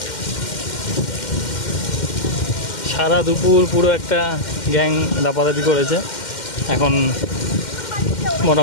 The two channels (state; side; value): late; right; 2.1 ms